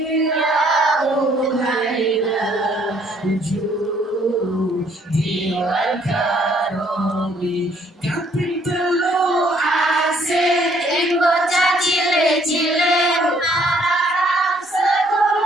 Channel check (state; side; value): normal; both; correlation 0.65